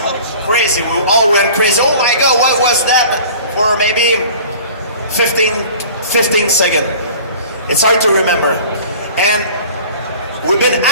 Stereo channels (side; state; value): both; inverted; correlation -0.44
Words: crazy. We all went crazy. Oh my God, what was that? For maybe 15 seconds. It's hard to remember. And we've been